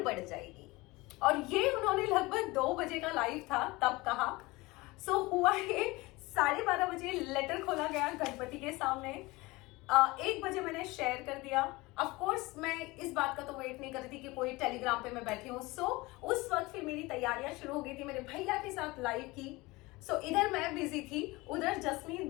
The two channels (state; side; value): quieter; right; 22.1 dB